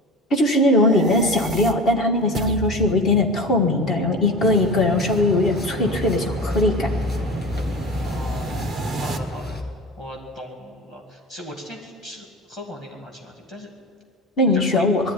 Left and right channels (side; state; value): both; normal; correlation 0.31